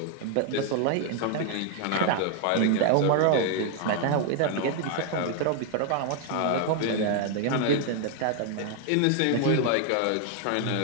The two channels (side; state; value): both; different; correlation 0.00